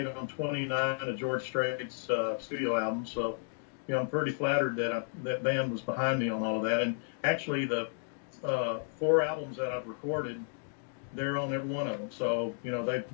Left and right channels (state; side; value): silent; right; 56 dB below the other